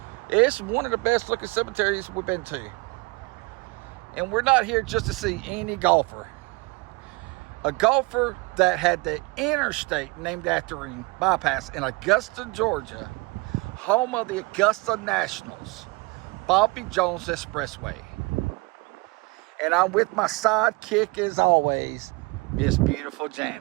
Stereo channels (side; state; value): left; quieter; 26.3 dB